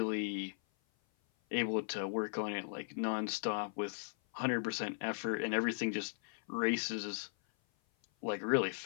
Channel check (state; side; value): silent; right; 53 dB below the other